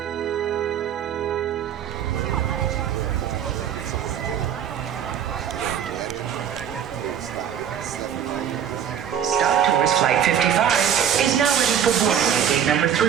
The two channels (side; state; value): left; quieter; 9.0 dB